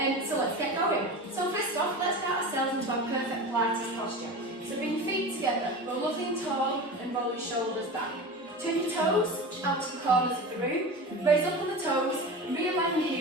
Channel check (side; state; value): both; normal; correlation 0.30